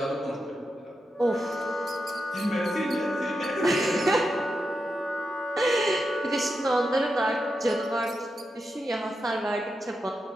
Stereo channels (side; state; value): both; normal; correlation 0.87